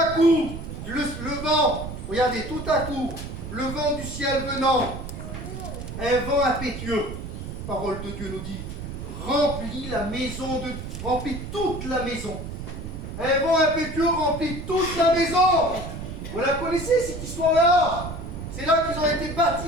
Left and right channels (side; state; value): right; noise; rumble, 8 dB below the sound